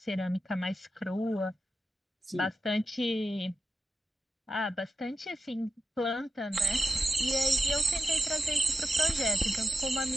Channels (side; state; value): both; normal; correlation 0.89